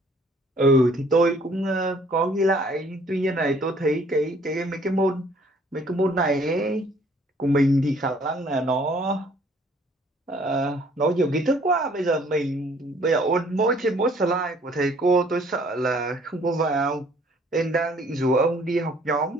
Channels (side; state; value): both; normal; correlation 0.59